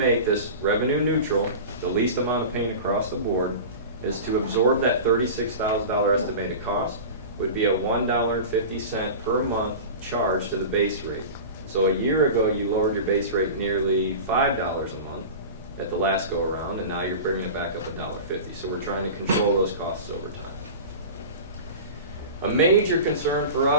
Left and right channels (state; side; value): inverted; both; correlation -0.32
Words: this revenue neutral, the least amount of pain across the board, is to absorb that $36,000 estimated cost, would be a $1.50 per month charge to the base rate. So a year ago, you lowered your base rate nearly $5 a month at the last go around, and now you're bringing it back up $1.50. So we're trying to control those costs over time. A major concern for